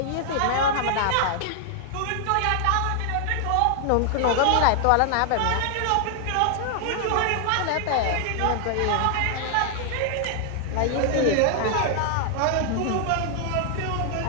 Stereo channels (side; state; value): both; different; correlation 0.00